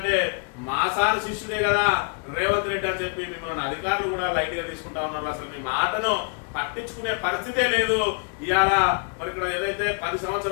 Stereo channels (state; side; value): quieter; right; 39.7 dB